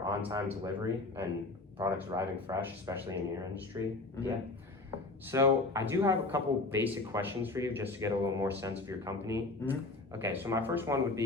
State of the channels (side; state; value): right; quieter; 3.2 dB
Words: on-time delivery and products arriving fresh, especially in your industry. Yeah. So I do have a couple basic questions for you just to get a little more sense of your company. Okay, so my first one would